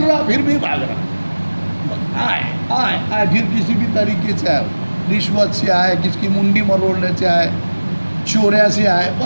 رہا پھر بھی بھاگ رہا، آئے پھر کسی بھی طریقے سے آئے، رشوت سے آئے، کس کی منڈی مروڑنے سے آئے، چوریا سے آئے،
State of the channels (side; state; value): both; inverted; correlation -1.00